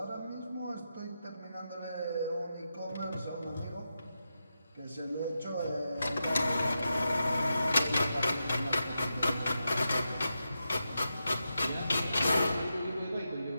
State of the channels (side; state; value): both; inverted; correlation -0.88